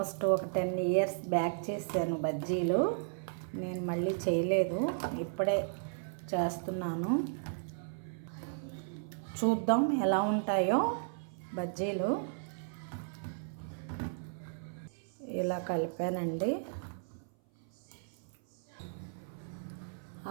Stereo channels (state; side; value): silent; left; 55 dB below the other